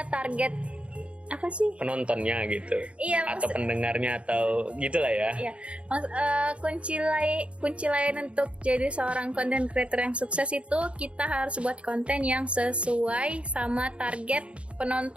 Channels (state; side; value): late; left; 0.060 ms